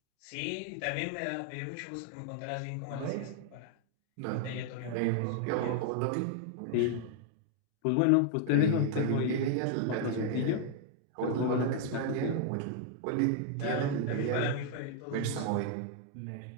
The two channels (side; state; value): both; different; correlation 0.00